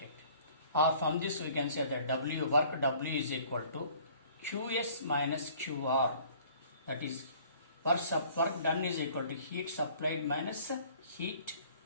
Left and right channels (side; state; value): both; inverted; correlation -0.53